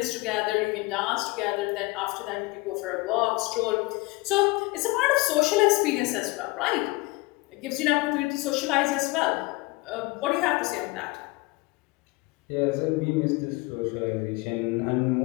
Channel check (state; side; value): quieter; right; 23.6 dB